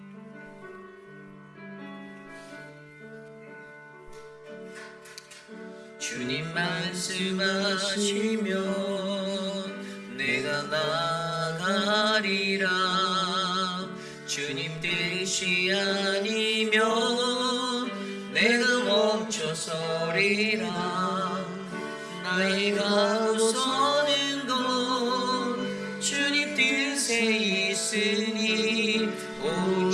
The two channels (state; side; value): identical; both; correlation 1.00